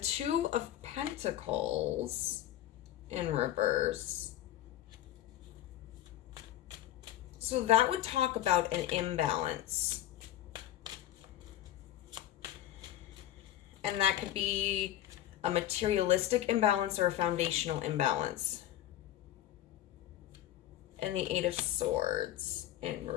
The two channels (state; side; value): quieter; right; 12.9 dB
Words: of Pentacles in reverse. So that would talk about an imbalance. And that could be a materialistic imbalance or a foundational imbalance. And the Eight of Swords in